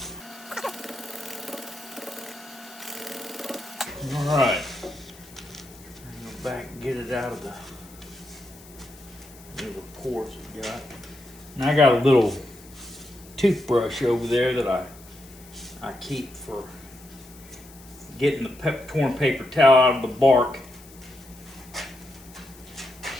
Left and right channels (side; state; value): left; noise; hiss, 22 dB below the sound